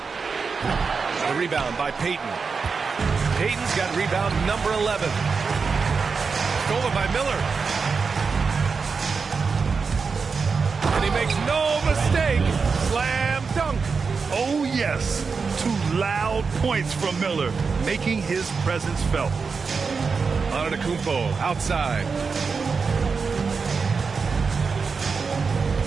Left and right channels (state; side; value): quieter; left; 5.1 dB